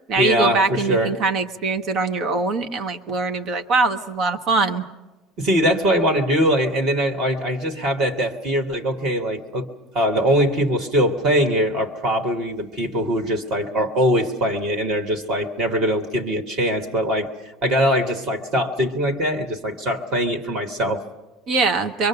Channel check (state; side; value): normal; both; correlation 0.34